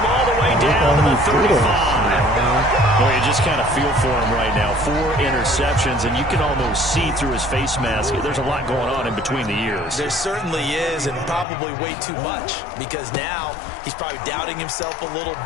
all the way down to the 35. Well, you just kind of feel for him right now. 4 interceptions, and you can almost see through his face mask. There's a lot going on in between the ears. There certainly is, and probably way too much, because now he's probably doubting himself a little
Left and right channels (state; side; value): drops out; right; at 11.5 s